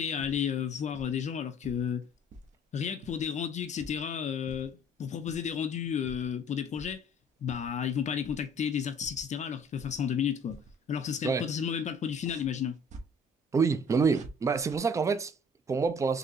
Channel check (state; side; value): normal; both; correlation 0.54